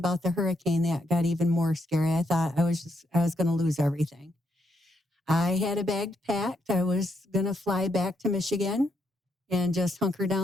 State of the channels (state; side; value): normal; both; correlation 0.77